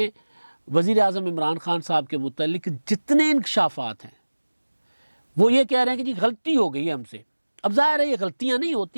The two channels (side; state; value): both; inverted; correlation -1.00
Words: وزیر اعظم عمران خان صاحب کے متعلق جتنے انکشافات ہیں وہ یہ کہہ رہے ہیں کہ جی غلطی ہو گئی ہے ہم سے. اب ظاہر ہے یہ غلطیاں نہیں